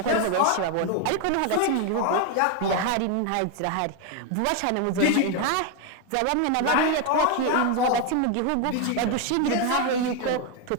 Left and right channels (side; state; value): both; different; correlation 0.01